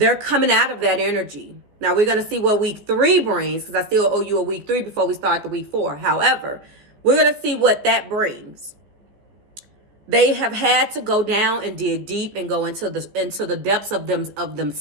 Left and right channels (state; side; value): late; left; 14 ms